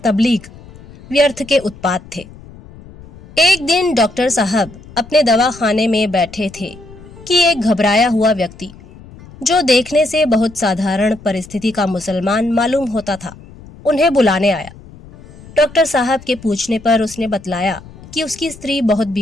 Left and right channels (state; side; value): noise; left; rumble, 20 dB below the sound